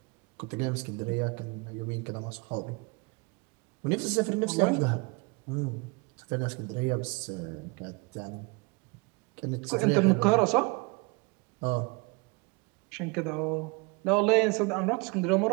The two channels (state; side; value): quieter; left; 28.6 dB